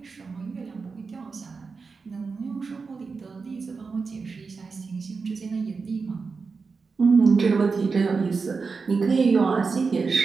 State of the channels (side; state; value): left; quieter; 4.7 dB